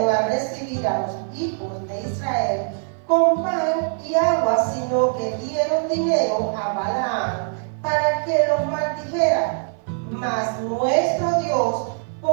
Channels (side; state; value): left; silent; 57 dB below the other